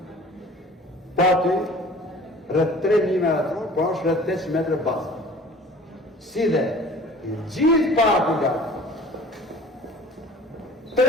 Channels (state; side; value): normal; both; correlation 0.46